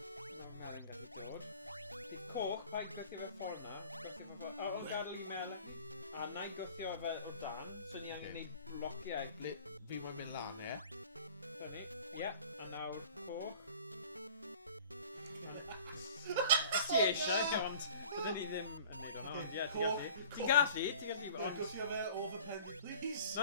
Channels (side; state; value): both; inverted; correlation -0.45